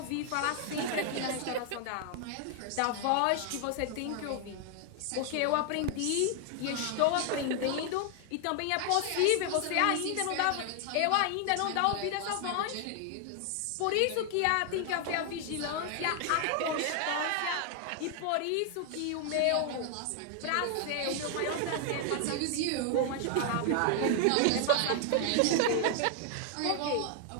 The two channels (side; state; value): both; different; correlation 0.00